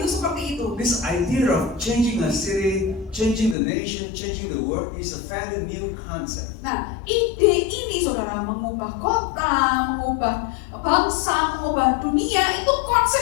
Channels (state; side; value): drops out; right; at 3.6 s